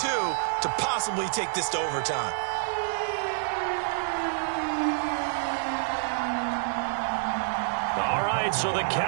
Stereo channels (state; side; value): silent; left; digital silence